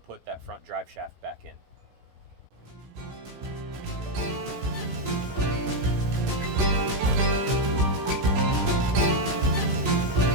that front drive shaft back in.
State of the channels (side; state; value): left; late; 16 ms